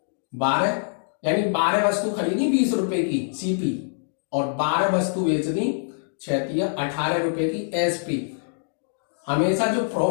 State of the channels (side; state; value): right; silent; digital silence